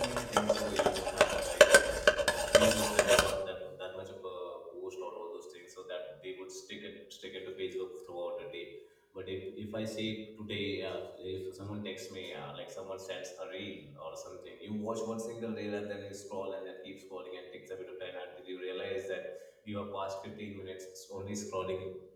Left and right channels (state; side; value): identical; both; correlation 1.00